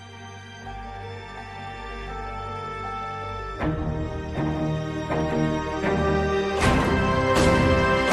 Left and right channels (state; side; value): identical; both; correlation 1.00